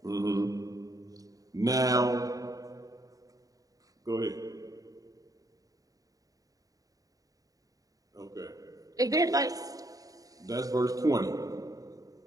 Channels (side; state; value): left; late; 0.17 ms